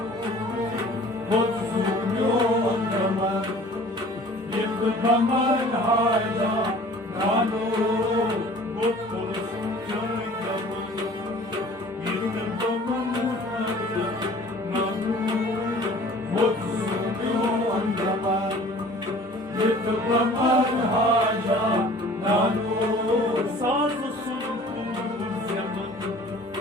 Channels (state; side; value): normal; both; correlation 0.48